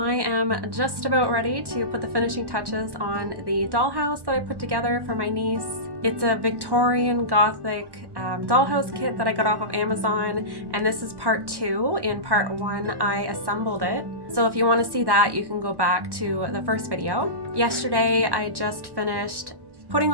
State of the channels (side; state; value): left; late; 1.1 ms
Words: am just about ready to put the finishing touches on the dollhouse that I put together for my niece. It's a Victorian Gothic dollhouse kit that I got off of Amazon, and this is part 2. In part 1 I assembled it. So if you want to see that, you can go back to the first video. Yesterday I just finished putting